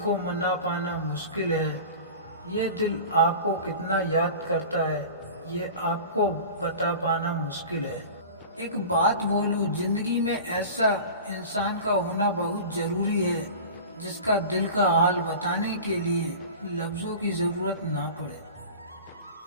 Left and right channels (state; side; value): inverted; both; correlation -0.36